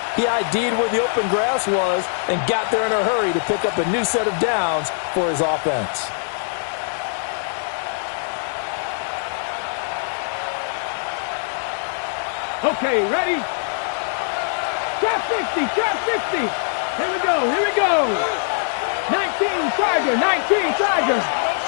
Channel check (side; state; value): right; silent; 64 dB below the other